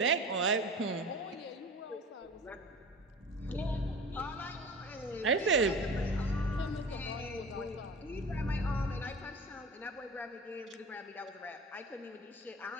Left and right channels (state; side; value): normal; both; correlation 0.36